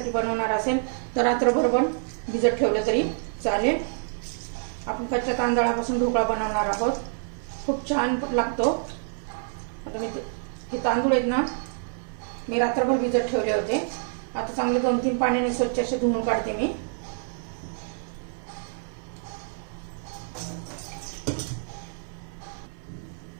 बनवणार असेल तर रात्रभर पण भिजत ठेवलं तरी चालेल। आपण कच्च्या तांदळापासून ढोकळा बनवणार आहोत, खूप छान लागतो। आता मी हे तांदूळ आहेत ना, मी रात्रभर भिजत ठेवले होते। आता चांगले 2-3 पाण्याने स्वच्छ असे धुवून काढते मी।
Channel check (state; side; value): silent; left; 57 dB below the other